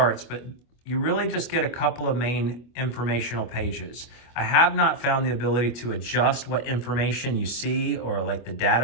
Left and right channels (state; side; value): late; right; 25 ms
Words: But you really just get a couple of main informational pages. I have not found the ability to adjust what information you see, or like the